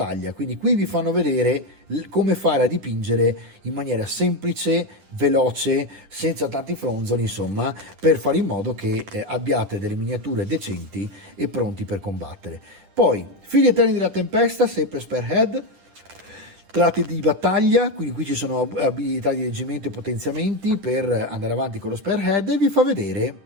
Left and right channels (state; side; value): late; left; 10 ms